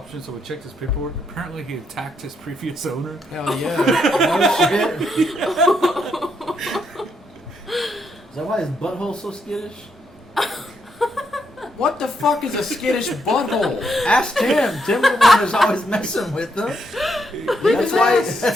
So we checked his paperwork. Apparently, he attacked his previous owner. Hell yeah. Oh shit. Is that why his butthole's so skittish? What the fuck is a skittish butthole? Ask Tim. Tim the one who's always messing with them.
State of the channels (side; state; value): both; normal; correlation 0.77